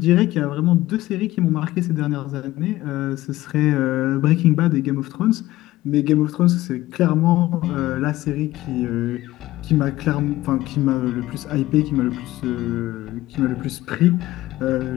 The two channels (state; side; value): quieter; right; 16.6 dB